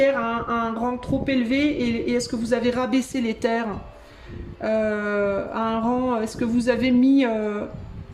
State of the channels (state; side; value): identical; both; correlation 1.00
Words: à un rang trop élevé et est-ce que vous avez rabaissé les terres à un rang? Est-ce que vous avez mis